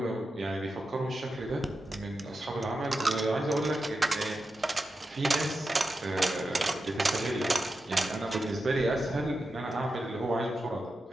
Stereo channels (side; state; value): both; normal; correlation 0.90